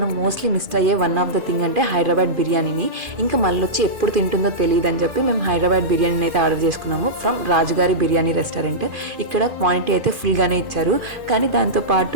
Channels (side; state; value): left; late; 2.5 ms